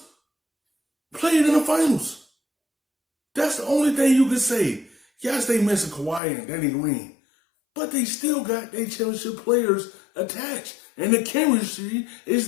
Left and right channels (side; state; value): right; drops out; at 6.2 s